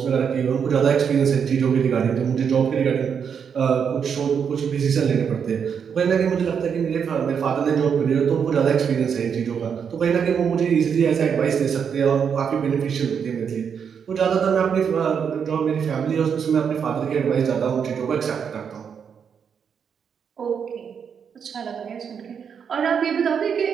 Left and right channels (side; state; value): left; quieter; 7.1 dB